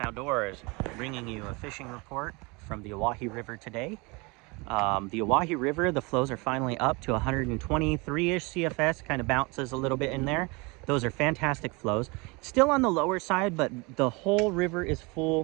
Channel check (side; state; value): left; quieter; 27.3 dB